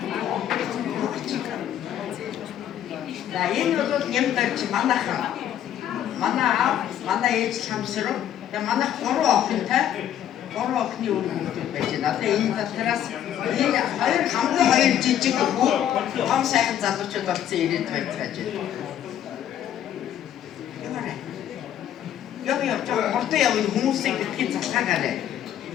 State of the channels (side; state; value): right; quieter; 10.6 dB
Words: За энэ бол нэмдэж манайхан. Манай ээж хамсруу. Тэгээ манайх 3 охинтой 3 охины үр хүүхдүүд байж байна. Одоо энэ дотроос энэ хамгийн жижиг хүү том сайхан залуучууд болсон ирээд байж байгаа. Яг хурдан явна хүмүүсийг битгий залхаагаарай.